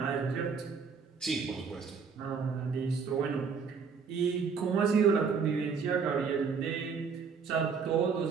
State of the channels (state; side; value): quieter; left; 5.7 dB